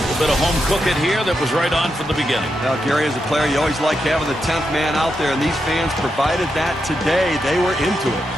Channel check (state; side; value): normal; both; correlation 0.85